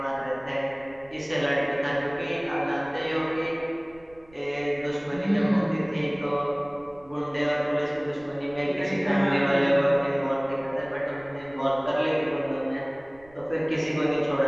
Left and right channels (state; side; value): noise; right; rumble, 26 dB below the sound